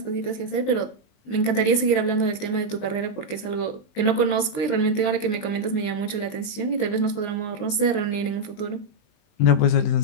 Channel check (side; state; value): right; late; 20 ms